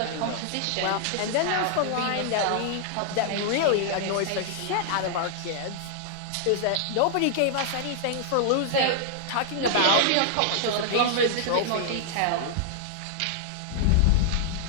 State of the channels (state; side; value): different; both; correlation -0.01